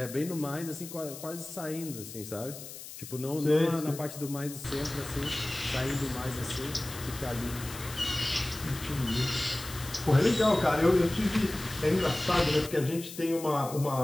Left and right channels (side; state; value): left; noise; hiss, 13 dB below the sound